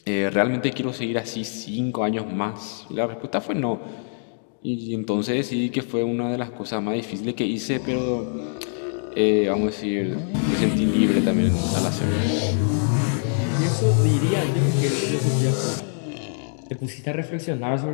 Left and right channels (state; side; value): silent; right; digital silence